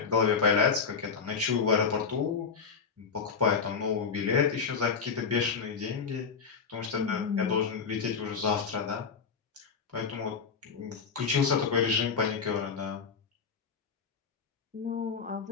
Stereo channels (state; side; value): quieter; right; 5.8 dB